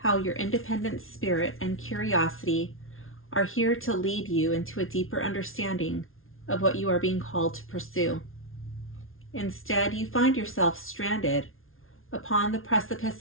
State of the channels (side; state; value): right; late; 0.61 ms